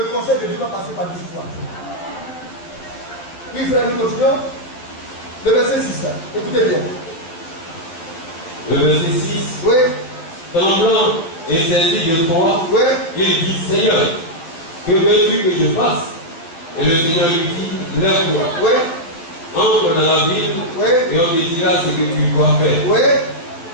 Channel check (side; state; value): right; late; 12 ms